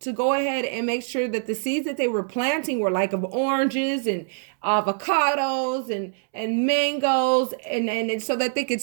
go ahead and make sure that the seeds that they were planting were like of oranges and avocados and mangoes, and so that they could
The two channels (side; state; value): left; silent; 62 dB below the other